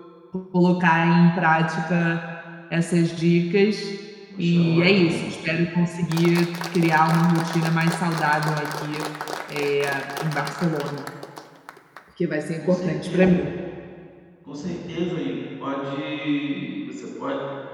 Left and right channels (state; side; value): identical; both; correlation 1.00